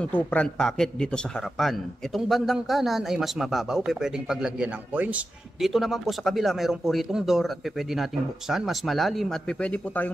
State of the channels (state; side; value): normal; both; correlation 0.91